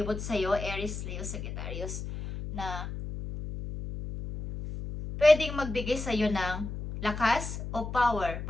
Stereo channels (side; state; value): left; noise; hum, 7 dB below the sound